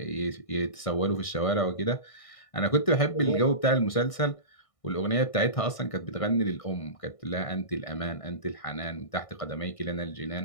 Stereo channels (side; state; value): right; late; 1.6 ms